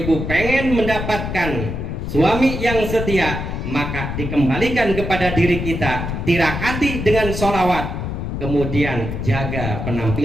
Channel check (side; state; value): left; noise; rumble, 4 dB below the sound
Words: pengen mendapatkan suami yang setia, maka dikembalikan kepada diri kita, tirakati dengan sholawat, kemudian jaga